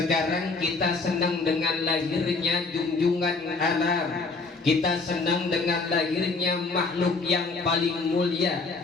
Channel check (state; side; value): quieter; right; 3.9 dB